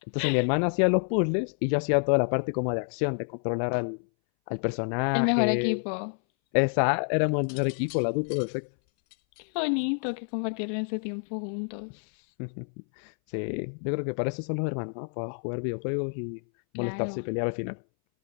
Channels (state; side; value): silent; right; 59 dB below the other